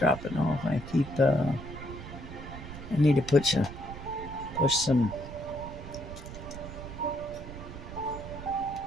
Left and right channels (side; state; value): right; noise; rumble, 11 dB below the sound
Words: off. I need to push some.